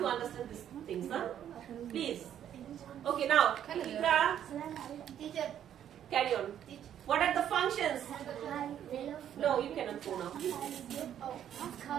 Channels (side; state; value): left; quieter; 10.1 dB